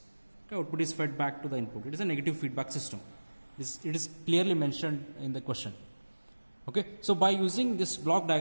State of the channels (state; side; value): inverted; both; correlation -1.00